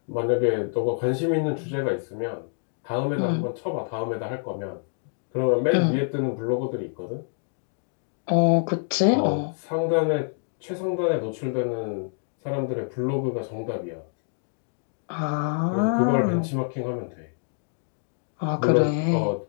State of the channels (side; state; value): right; silent; digital silence